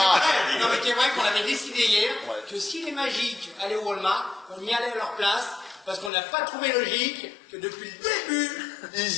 mais c'est vrai qu'on avait décidé hier que si les magiques allaient au Walmart, on y allait à leur place, parce qu'on n'a pas trouvé logique que depuis le début,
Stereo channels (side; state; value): right; drops out; at 6.1 s